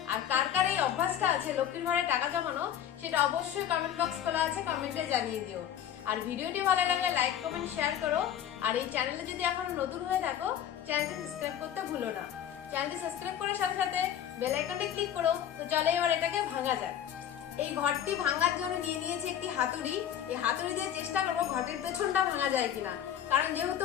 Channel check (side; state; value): right; quieter; 10.1 dB